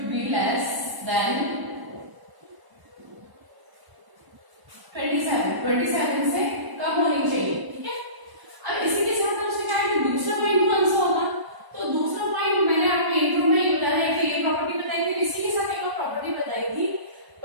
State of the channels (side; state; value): left; late; 1.0 ms